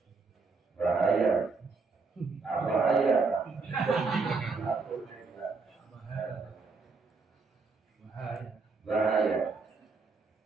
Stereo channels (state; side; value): quieter; left; 4.3 dB